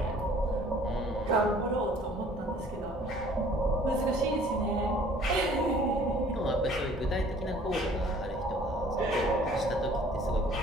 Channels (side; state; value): both; normal; correlation 0.54